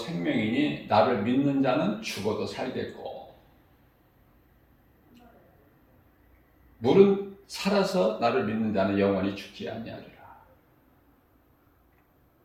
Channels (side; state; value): both; identical; correlation 1.00